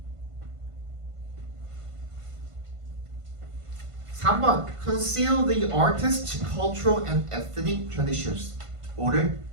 3번 Conceal the artist's cultural and ethnic traditions. 5를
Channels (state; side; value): late; left; 1.5 ms